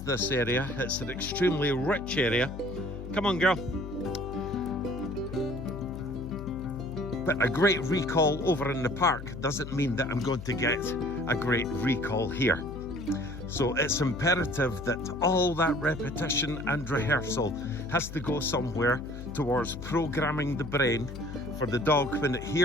this area. It's an extremely rich area. Come on, girl. But a great recall over in the park doesn't mean that I'm going to get a great recall here. So it's imperative that all that repetition and rehearsal has to go somewhere towards programming the brain for the dog when it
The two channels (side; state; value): left; noise; hum, 11 dB below the sound